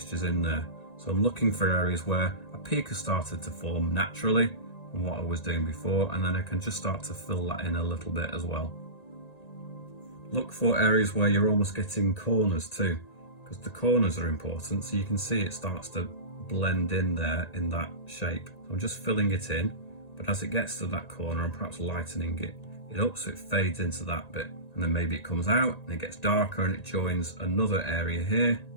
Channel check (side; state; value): right; late; 1.9 ms